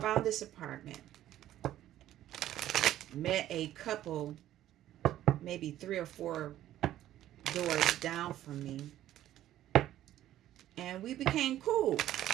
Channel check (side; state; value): left; quieter; 13.0 dB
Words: this apartment, met a couple, maybe 3 or 4 doors down from me, and we became cool.